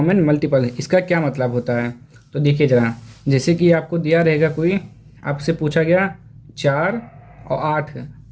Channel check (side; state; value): both; identical; correlation 1.00